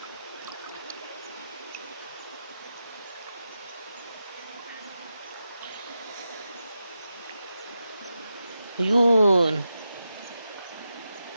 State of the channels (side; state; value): both; inverted; correlation -0.90